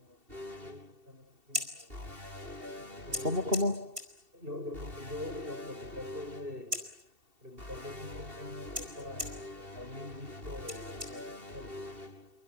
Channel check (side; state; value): left; late; 2.7 ms